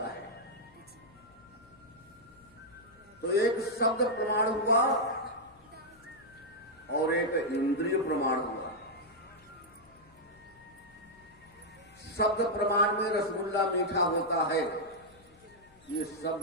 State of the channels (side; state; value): left; noise; hum, 28 dB below the sound